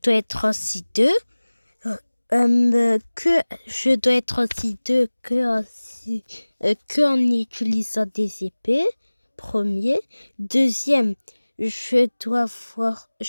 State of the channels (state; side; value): inverted; both; correlation -1.00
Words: être aussi deux. Que je dois être aussi deux que en utilisant des épées. Premier. Deuxième, je dois voir